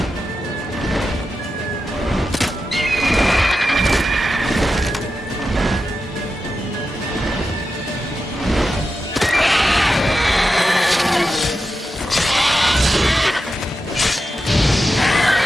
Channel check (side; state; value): both; normal; correlation 0.90